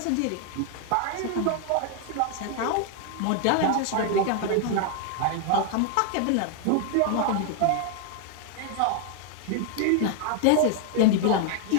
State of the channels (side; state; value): both; different; correlation 0.00